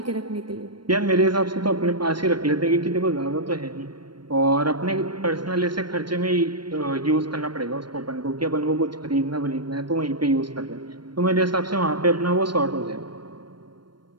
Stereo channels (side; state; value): left; late; 0.72 ms